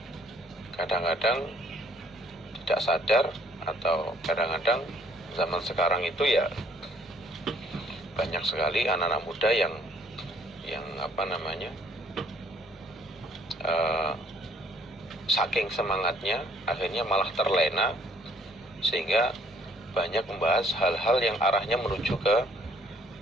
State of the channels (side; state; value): both; normal; correlation 0.62